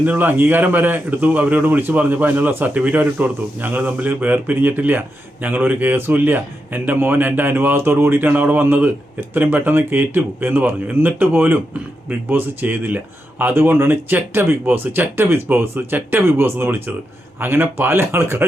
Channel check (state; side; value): normal; both; correlation 0.86